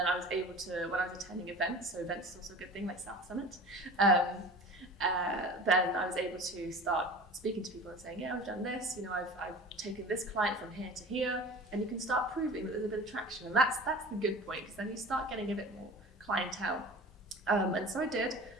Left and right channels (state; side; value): normal; both; correlation 0.39